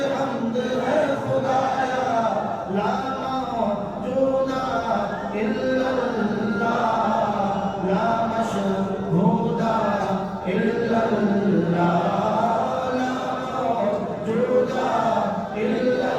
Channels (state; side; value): identical; both; correlation 1.00